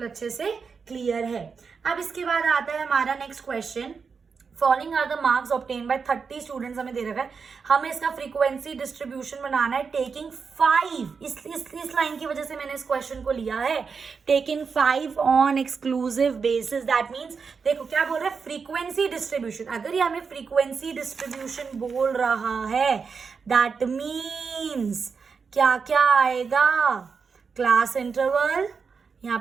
अच्छे से क्लियर है। अब इसके बाद आता है हमारा next question, following are the marks obtained by 30 students, हमें दे रखा है हमें इसका फ्रीक्वेंसी डिस्ट्रीब्यूशन बनाना है टेकिंग 5, इस लाइन की वजह से मैंने इस क्वेश्चन को लिया है, taking 5 on exclusive basis. That means देखो क्या बोल रहा है, फ्रीक्वेंसी डिस्ट्रीब्यूशन। अगर ये हमें फ्रीक्वेंसी डिस्ट्रीब्यूशन बोल रहा है दैट मीन्स क्या क्या आएगा, क्लास इंटरवल, यहाँ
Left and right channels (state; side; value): quieter; left; 5.5 dB